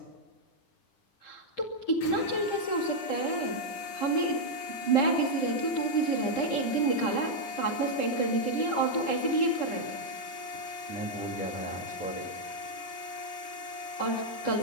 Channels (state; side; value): late; right; 10 ms